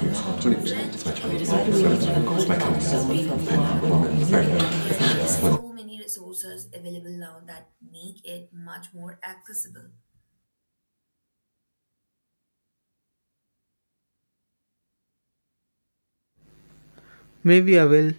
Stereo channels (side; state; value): both; inverted; correlation -1.00